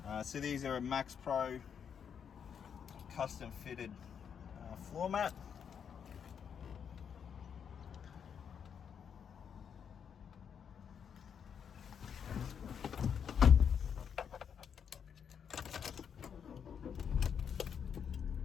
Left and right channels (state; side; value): quieter; right; 7.5 dB